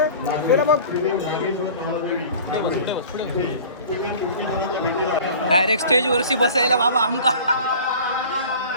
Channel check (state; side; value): inverted; both; correlation -0.42